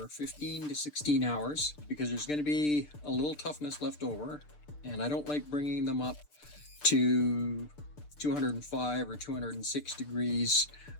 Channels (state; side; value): late; right; 6.7 ms